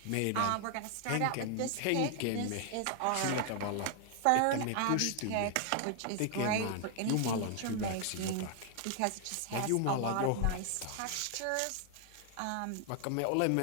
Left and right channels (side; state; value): both; different; correlation 0.00